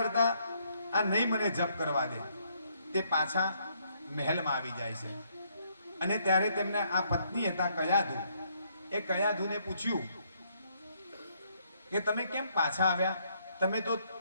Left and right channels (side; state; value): both; inverted; correlation -0.71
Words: આ નહીં મને જપ કરવા દે. તે પાછા મહેલમાં આવી જાય છે. અને ત્યારે તેમને આ પત્ની હતા કયાધુ, એ કયાધુને પૂછ્યું કે તમે કેમ પાછા આવ્યા? તમે તો